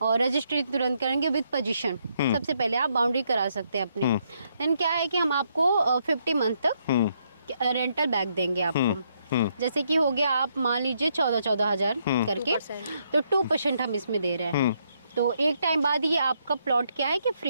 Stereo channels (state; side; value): inverted; both; correlation -0.75